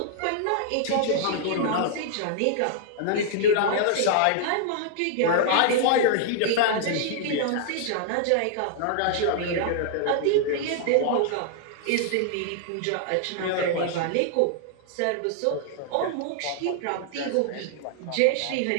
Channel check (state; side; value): different; both; correlation -0.01